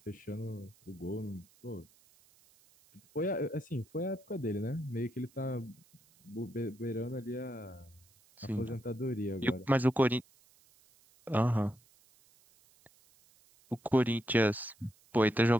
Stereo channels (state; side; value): noise; right; hiss, 30 dB below the sound